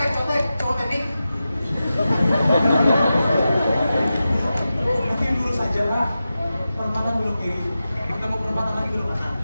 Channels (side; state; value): both; inverted; correlation -0.92